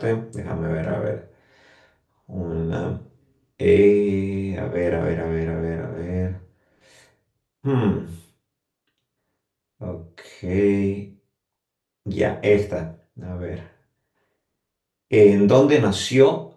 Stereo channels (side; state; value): both; identical; correlation 1.00